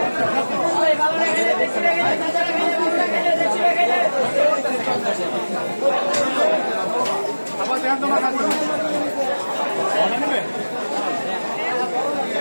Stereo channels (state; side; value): inverted; both; correlation -1.00